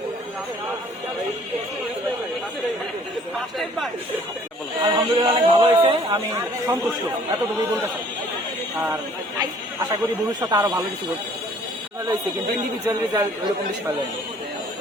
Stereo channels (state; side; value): normal; both; correlation 0.56